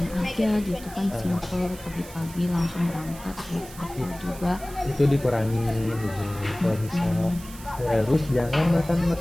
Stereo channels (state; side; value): noise; right; hiss, 17 dB below the sound